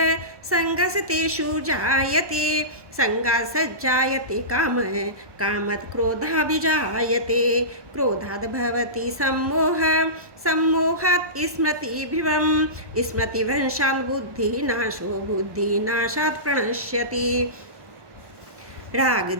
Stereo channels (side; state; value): left; late; 1.2 ms